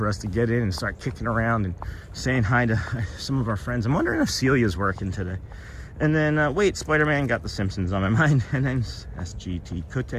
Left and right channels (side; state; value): both; identical; correlation 1.00